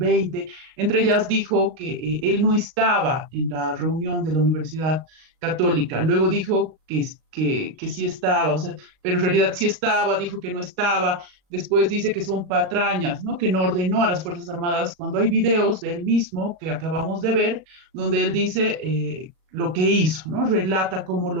Entre ellas dijo que él no estaba en la reunión de la Universidad Católica. Luego dijo que sí estaba, o sea, pero en realidad sí estaba, dijo que no estaba. Después dice que son patrañas, ¿no? Que no ordenó a las Fuerzas Armadas, cuando hay videos de él mismo que acabamos de ver, donde él dice lo que hizo, ¿no? Relata cómo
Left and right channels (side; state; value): left; late; 38 ms